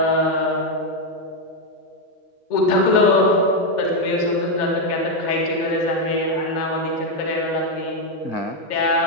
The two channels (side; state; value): right; late; 2.1 ms